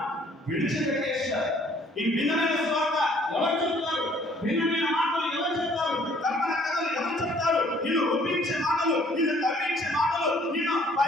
విడిచిపెట్టేశారు. ఈ భిన్నమైన స్వార్థ ఎవరు చెప్తారు? భిన్నమైన మాటలు ఎవరు చెప్తారు? కల్పన కథలు ఎవరు చెప్తారు? నిన్ను ఒప్పించే మాటలు, నిన్ను కవ్వించే మాటలు, నిన్ను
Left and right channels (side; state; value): both; normal; correlation 0.60